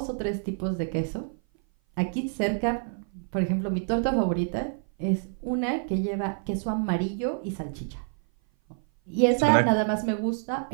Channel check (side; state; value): left; silent; 56 dB below the other